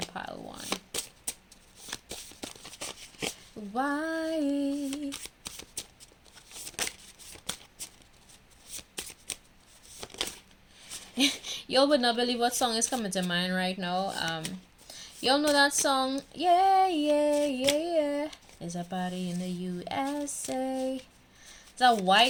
one? Why? Y'all would not believe what song is coming to mind right now. Y'all know that song? Yeah, yeah, yeah, yeah. It's a party in the USA. It's a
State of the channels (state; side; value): identical; both; correlation 1.00